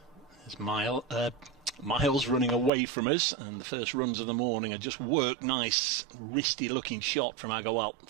There's Miles running away from us, and the first runs of the morning are just worked. Nice, wristy-looking shot from Agarwal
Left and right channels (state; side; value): drops out; left; at 2.7 s